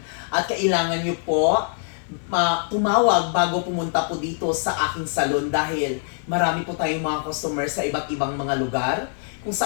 At kailangan nyo po tumawag bago pumunta po dito sa aking salon dahil marami po tayong mga customer sa iba't ibang mga lugar kung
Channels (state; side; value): silent; right; 58 dB below the other